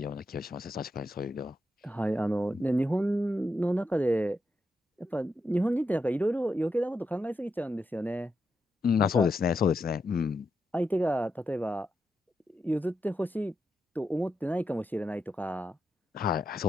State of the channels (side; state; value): both; normal; correlation 0.85